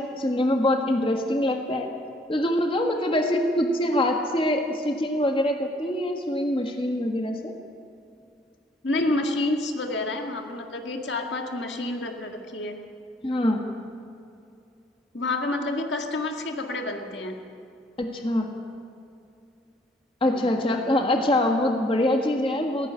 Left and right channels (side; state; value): both; normal; correlation 0.62